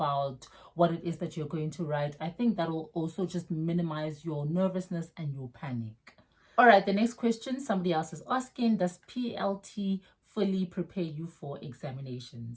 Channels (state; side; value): identical; both; correlation 1.00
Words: what it is that you're going to write, I think that will also just minimize your nervousness and your panic. All right, the next question somebody else is asking, does PLT fully prepare you for